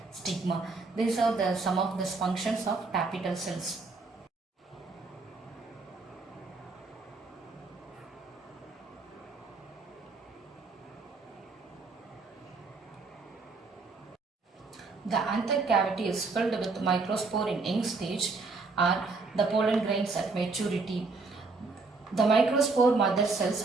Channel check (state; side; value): quieter; left; 3.9 dB